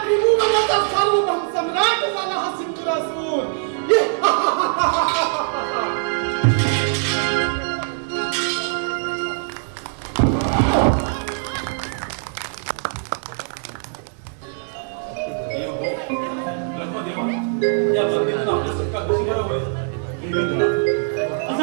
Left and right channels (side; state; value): left; silent; 64 dB below the other